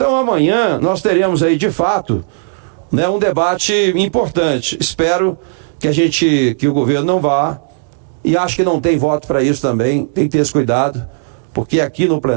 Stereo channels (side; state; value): left; silent; digital silence